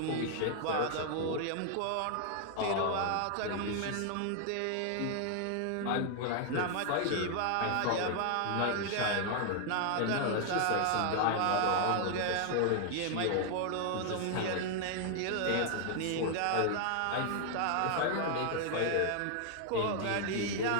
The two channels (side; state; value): both; different; correlation 0.00